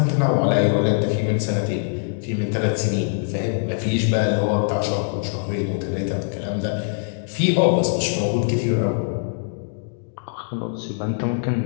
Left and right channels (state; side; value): silent; right; digital silence